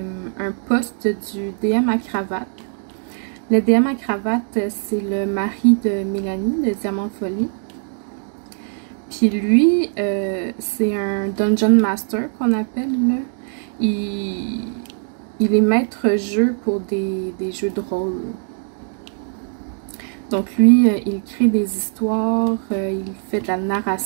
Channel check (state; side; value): silent; left; digital silence